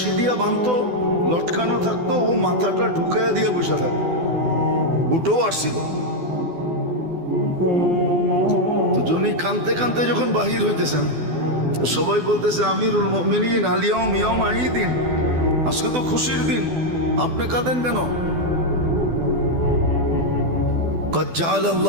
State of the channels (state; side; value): late; left; 12 ms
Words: দিয়া বাঁধতো, লটকানো থাকতো, ও মাথাটা ঢুকাইয়া দিয়ে বসে থাকতো। উঠেও আসছিল। তো যিনি কানতে কানতে যখন বাহির হইতেছেন, সবাই বলতেছে আমিরুল মুমিনিন আলিয়াউম ইয়াউম ঈদিন, আজকে তো খুশির দিন, আপনি কাঁদেন কেন? قد جعل